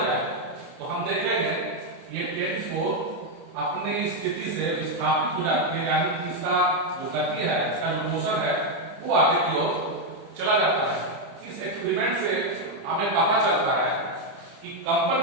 जाए, तो हम देखेंगे ये टेनिस बॉल अपनी स्थिति से विस्थापित हो जाती है, यानी कि इसका जो गति है, इसका जो मोशन है, वो आगे की ओर चला जाता है। इस एक्सपेरिमेंट से हमें पता चलता है कि कंपन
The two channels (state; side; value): late; left; 30 ms